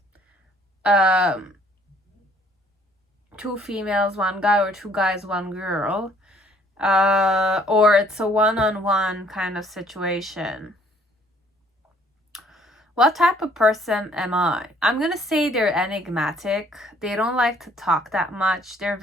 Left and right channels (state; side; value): normal; both; correlation 0.61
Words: 2 females, 1 guy, or 2 guys, 1 girl. Or it's a one-on-one kind of situation. What type of person am I? I'm gonna say they're enigmatic. They don't like to talk that much. They're